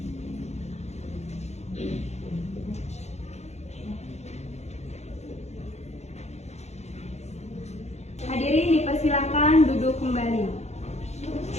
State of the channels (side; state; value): right; late; 0.32 ms